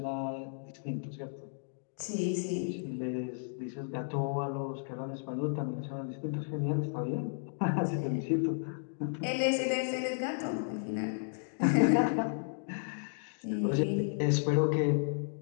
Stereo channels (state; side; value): silent; right; digital silence